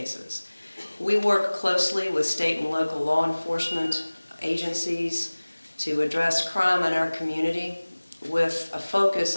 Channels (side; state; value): both; inverted; correlation -1.00